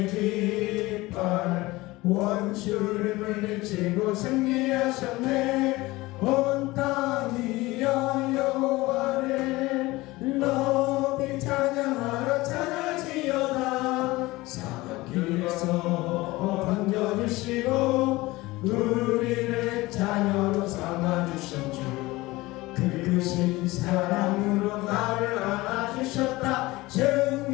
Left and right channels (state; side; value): quieter; right; 20.2 dB